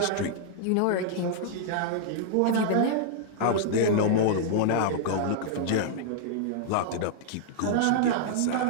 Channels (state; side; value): different; both; correlation -0.01